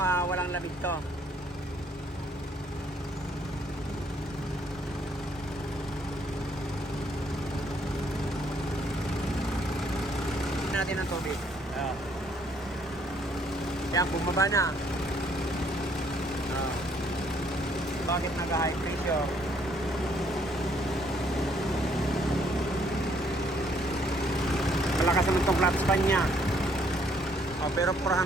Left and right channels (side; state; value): both; normal; correlation 0.67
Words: lamig to. Natin ang tubig. Yan, bumaba na. Bakit naka-high pressure? Malakas naman itong flat span niya. Pero